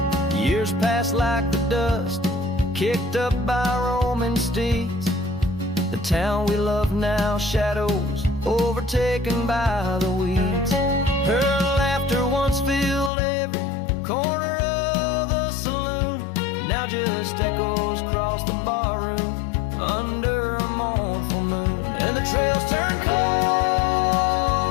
Years passed like the dust kicked up by roaming steeds. The town we love now, shadows overtaken by the weeds. Her laughter once filled every corner of the saloon, now just echoes across the barroom under a mournful moon. And the trails turn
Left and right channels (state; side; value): drops out; right; at 13.1 s